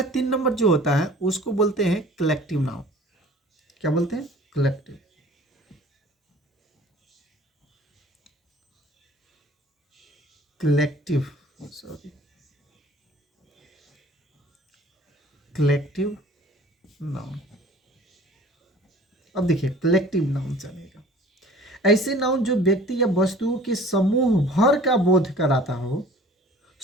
3 नंबर जो होता है उसको बोलते हैं कलेक्टिव नाउन। क्या बोलते हैं, collective. Collective, sorry, collective noun. अब देखिए कलेक्टिव नाउन चलेगा, ऐसे नाउन जो व्यक्ति या वस्तुओं के समूह भर का बोध कराता हो,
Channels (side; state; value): both; normal; correlation 0.48